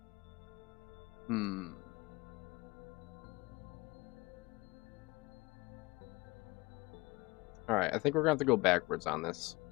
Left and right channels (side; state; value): right; quieter; 24.1 dB